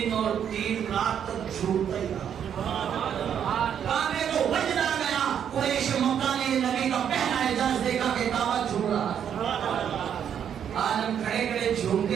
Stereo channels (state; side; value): quieter; left; 8.7 dB